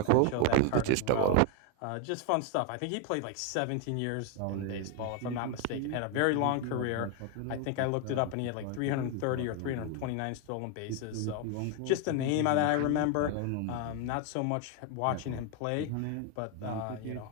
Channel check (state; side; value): different; both; correlation 0.01